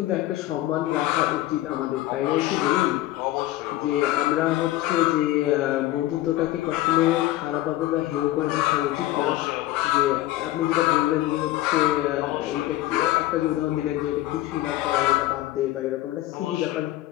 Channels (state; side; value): quieter; right; 15.7 dB